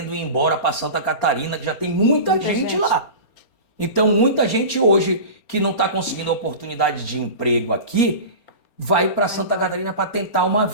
ir embora para Santa Catarina, que já tem muita gente lá. Então, muita gente hoje que não está conseguindo a oportunidade de emprego aqui, vai para Santa Catarina para tentar uma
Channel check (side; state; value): right; late; 4.3 ms